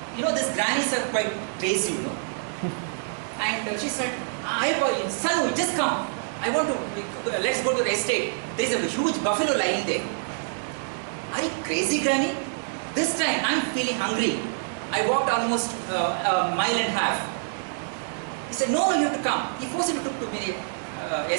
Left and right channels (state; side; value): silent; left; digital silence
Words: you know, these grannies are quite crazy, you know. And she said, "Son, just come. I want to. Let's go to the estate. There is a huge buffalo lying there." Are you crazy, granny? This time I'm feeling hungry. I walked almost a mile and a half. He said, "No, you have to come." He forcibly took to me